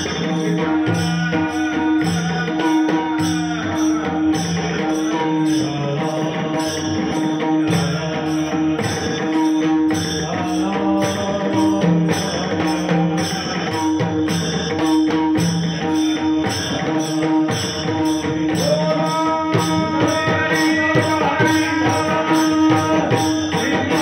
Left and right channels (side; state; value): both; identical; correlation 1.00